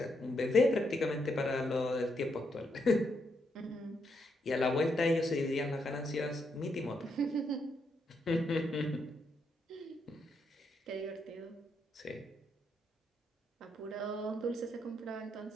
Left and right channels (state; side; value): normal; both; correlation 0.79